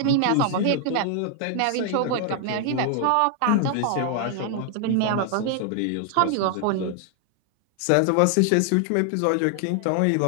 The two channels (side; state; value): both; different; correlation 0.00